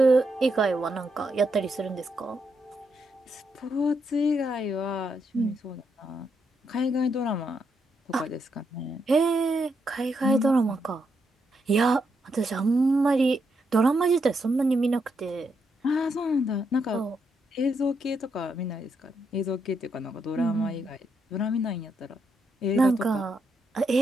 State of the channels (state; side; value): normal; both; correlation 0.80